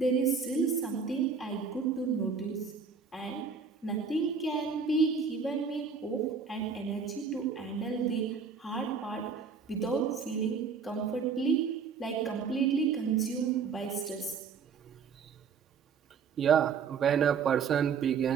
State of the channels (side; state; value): left; quieter; 5.8 dB